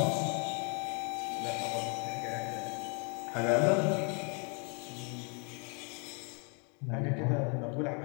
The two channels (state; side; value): quieter; right; 36.6 dB